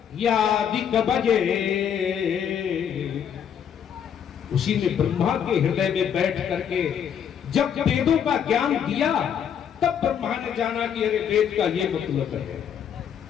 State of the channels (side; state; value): right; quieter; 8.4 dB